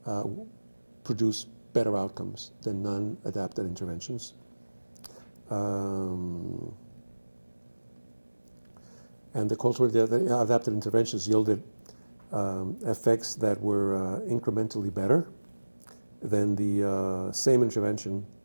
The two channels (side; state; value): both; inverted; correlation -1.00